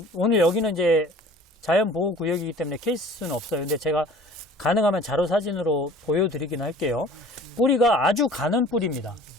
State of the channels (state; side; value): normal; both; correlation 0.46